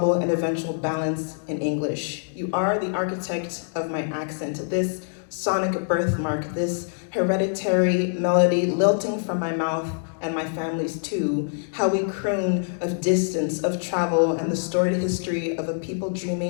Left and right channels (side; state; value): right; silent; digital silence